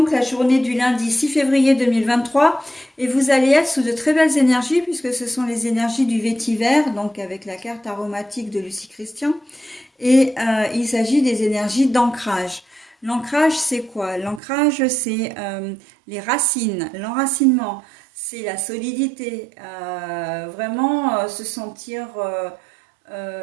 la journée du lundi 6 février 2023. Et vous allez être sous de très belles énergies puisque ce sont les énergies du vétiver, donc avec la carte aromatique de Lucie Christian. Et il s'agit des énergies d'ancrage. L'ancrage, c'est quoi? L'ancrage, c'est les racines, l'enracinement, c'est la solidité, vraiment se sentir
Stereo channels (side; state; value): left; drops out; at 14.4 s